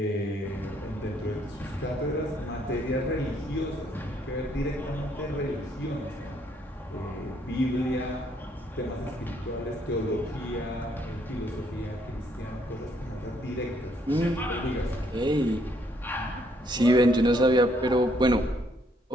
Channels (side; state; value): both; normal; correlation 0.69